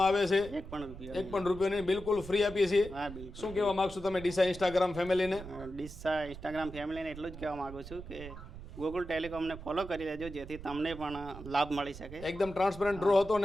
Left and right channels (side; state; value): right; noise; rumble, 13 dB below the sound